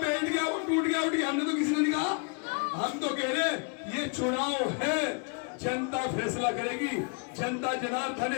गया वो टूट गया उठ गया, हमने तो किसी ने नहीं कहा। हम तो कह रहे ये चुनाव है, जनता फैसला करेगी, जनता जनार्दन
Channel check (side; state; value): right; quieter; 35.4 dB